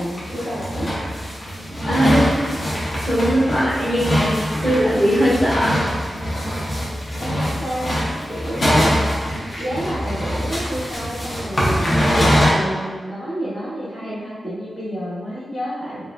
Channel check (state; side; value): normal; both; correlation 0.92